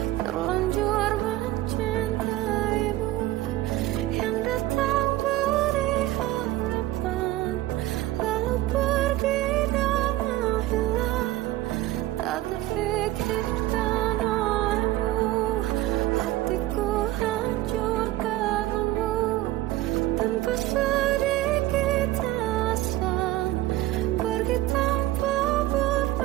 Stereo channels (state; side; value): quieter; left; 16.1 dB